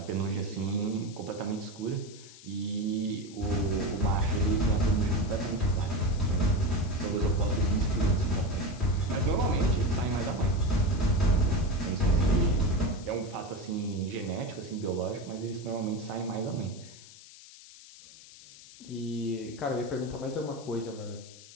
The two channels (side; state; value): left; noise; hiss, 19 dB below the sound